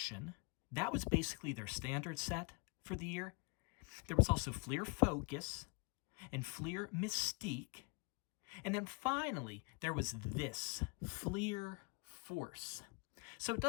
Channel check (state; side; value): quieter; right; 32.8 dB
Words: That was basically their standard set for the year. There was also Fleer Focus and Fleer Mystique. And then finally, there was this, Fleer Force. So it